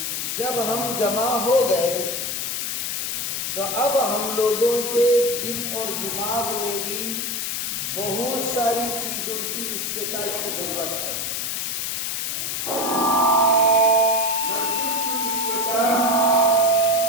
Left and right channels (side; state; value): left; noise; hiss, 2 dB below the sound